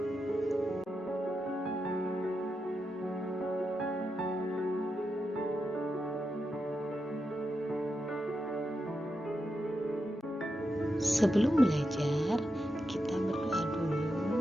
Sebelum belajar, kita berdoa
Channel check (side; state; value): both; normal; correlation 0.86